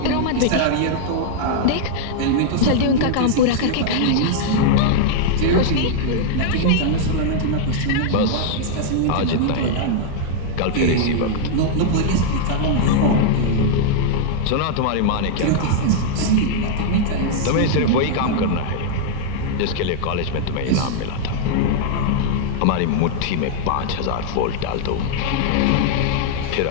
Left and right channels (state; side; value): different; both; correlation -0.01